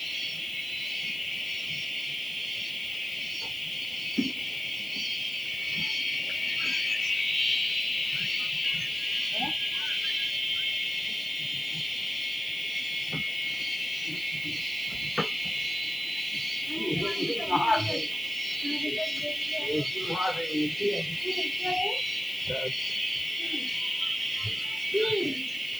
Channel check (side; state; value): left; noise; hiss, 21 dB below the sound